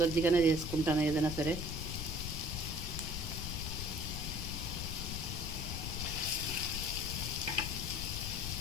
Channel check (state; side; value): noise; left; rumble, 4 dB below the sound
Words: చేసుకుంటాను ఏదైనా సరే.